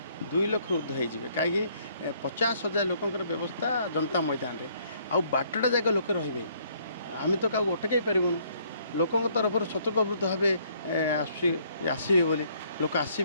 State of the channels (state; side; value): inverted; both; correlation -0.65